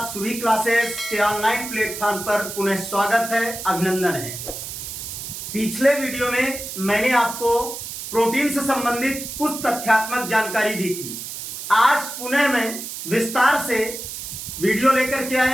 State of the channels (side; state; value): right; noise; hiss, 8 dB below the sound